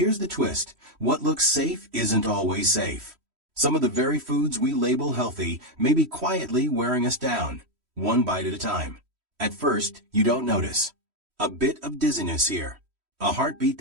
the twist. What looks safe isn't always safe. Some of the very foods we label healthy may be quietly wearing us down, one bite at a time. At first, you don't notice. A bit of dizziness here, a heartbeat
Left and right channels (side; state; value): left; late; 3.1 ms